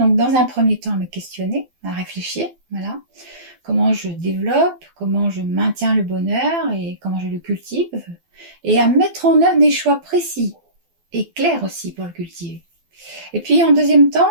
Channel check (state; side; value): late; left; 12 ms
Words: dans un premier temps, à me questionner, à réfléchir, voilà. Comment je développe, comment je maintiens le bonheur et comment je le cultive. Et à mettre en œuvre des choix précis et clairs aussi pour le cultiver. Et puis en deuxième temps,